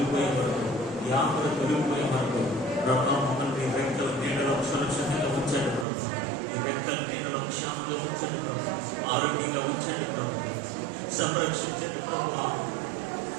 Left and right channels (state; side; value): drops out; left; at 5.9 s